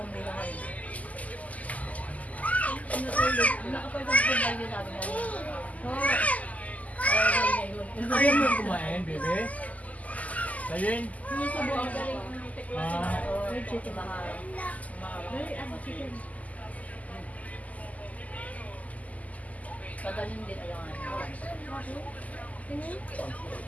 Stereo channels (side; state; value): right; late; 0.074 ms